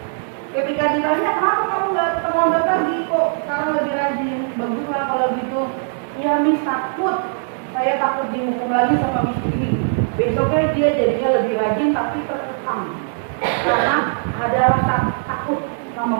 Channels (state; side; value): silent; left; digital silence